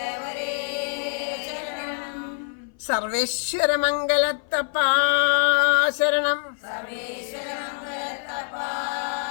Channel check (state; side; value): silent; right; 58 dB below the other